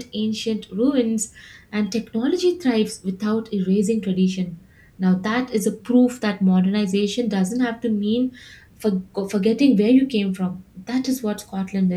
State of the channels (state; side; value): identical; both; correlation 1.00